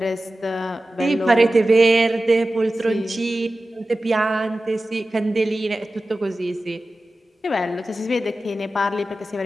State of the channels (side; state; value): both; normal; correlation 0.95